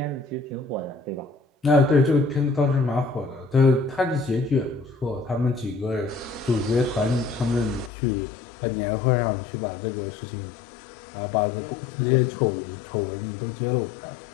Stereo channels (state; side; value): drops out; right; at 7.9 s